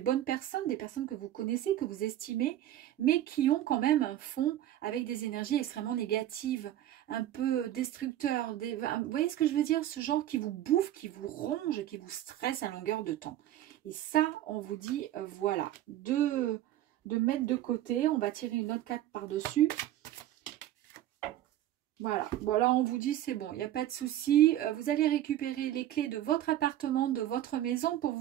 personnes, des personnes que vous connaissez, que vous estimez, mais qui ont quand même un fond avec des énergies extrêmement négatives, un peu destructeurs. Vous voyez ce que je veux dire? Ce genre qui vous bouffe, qui vous ronge, qui vous stresse à longueur de temps. Et ça, on vous dit, voilà, de mettre de côté. On va tirer une autre carte par-dessus. Voilà, bon là on vous dit c'est bon, il n'y a pas de souci. Vous allez récupérer les clés de votre appartement, de votre maison pour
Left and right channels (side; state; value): left; quieter; 12.8 dB